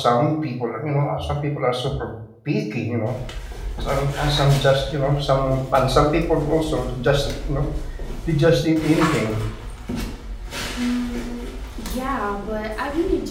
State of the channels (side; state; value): both; identical; correlation 1.00